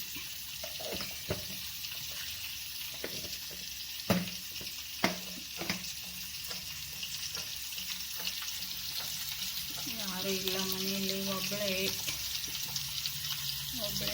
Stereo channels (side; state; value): both; identical; correlation 1.00